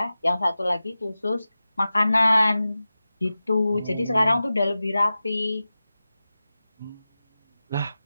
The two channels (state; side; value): inverted; both; correlation -0.95